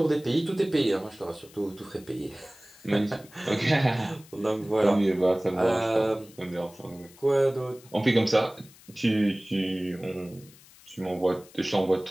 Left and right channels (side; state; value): left; noise; hiss, 24 dB below the sound